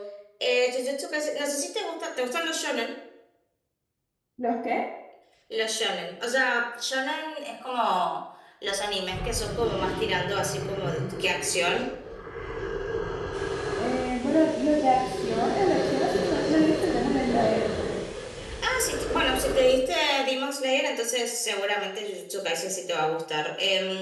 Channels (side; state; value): both; identical; correlation 1.00